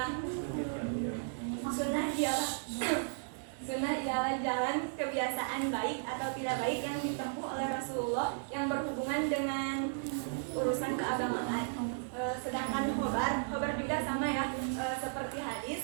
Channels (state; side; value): silent; left; 55 dB below the other